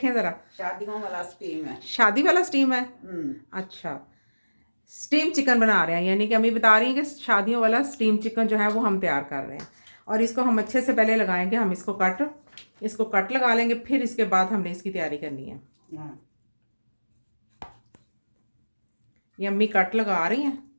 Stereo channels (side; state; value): both; inverted; correlation -1.00